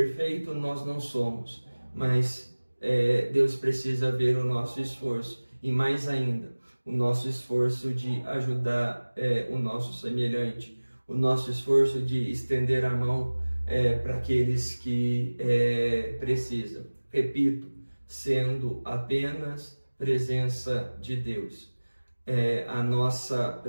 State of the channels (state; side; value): inverted; both; correlation -1.00